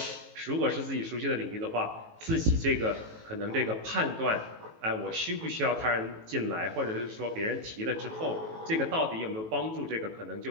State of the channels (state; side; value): late; left; 18 ms